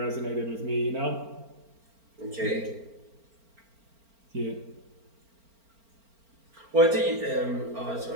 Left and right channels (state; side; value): late; left; 4.4 ms